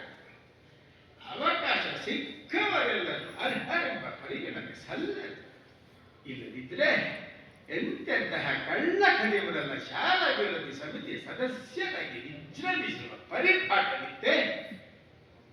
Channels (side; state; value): both; identical; correlation 1.00